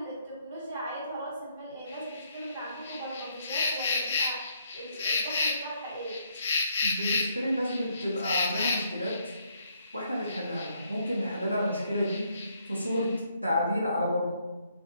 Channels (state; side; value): inverted; both; correlation -0.72